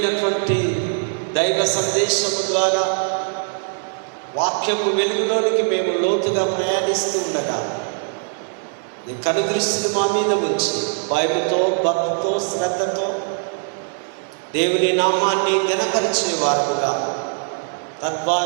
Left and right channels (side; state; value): left; silent; 61 dB below the other